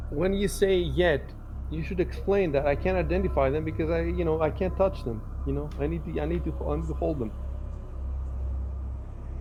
When you say yet, you should explain that I can't identify them because I can't touch them. I need to hold them.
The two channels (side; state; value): both; identical; correlation 1.00